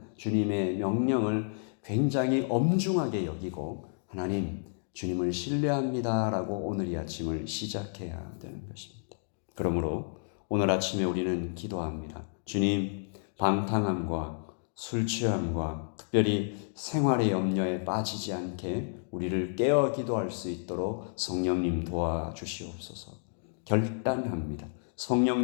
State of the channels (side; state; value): right; silent; digital silence